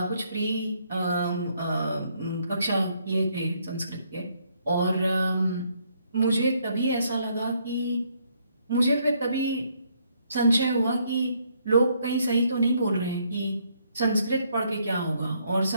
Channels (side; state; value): both; inverted; correlation -0.70